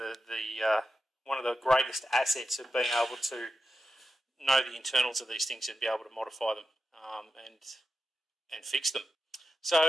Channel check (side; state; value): both; normal; correlation 0.89